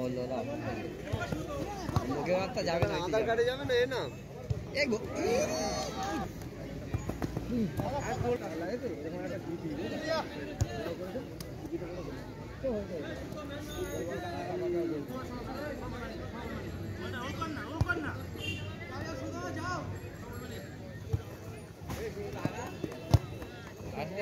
না লোকে রাস্তা যাবে না, আধার কার্ডে যাবে না, এ না এই গো আর গোল লাগে তো এরকম একটা বিট দিই না যাও আসলে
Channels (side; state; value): both; identical; correlation 1.00